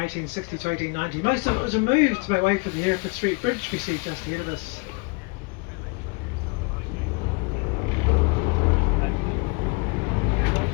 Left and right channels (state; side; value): quieter; right; 28.8 dB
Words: to 1890. Most of it was removed to make way for the Heritage Street Bridge we see just ahead of us.